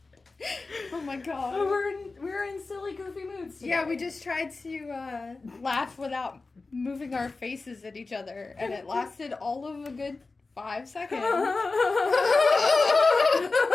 Oh my god. We're in silly, goofy moods today. Yeah, we just tried to laugh without moving our faces at each other, and it lasted all of a good 5 seconds.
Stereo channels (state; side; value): quieter; right; 3.7 dB